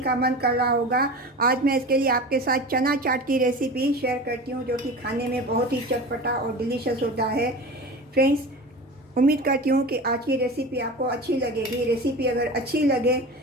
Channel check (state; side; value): normal; both; correlation 0.32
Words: मन कर रहा होगा। आज मैं इसके लिए आपके साथ चना चाट की रेसिपी शेयर करती हूँ, जो कि खाने में बहुत ही चटपटा और डिलीशियस होता है। फ्रेंड्स, उम्मीद करती हूँ कि आज की रेसिपी आपको अच्छी लगेगी। रेसिपी अगर अच्छी लगे